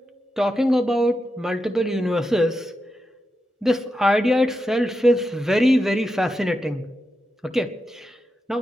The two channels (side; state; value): both; normal; correlation 0.88